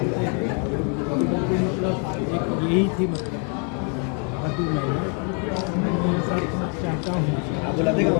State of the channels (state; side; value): quieter; right; 39.1 dB